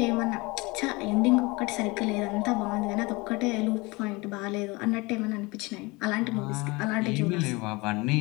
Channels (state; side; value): quieter; right; 24.6 dB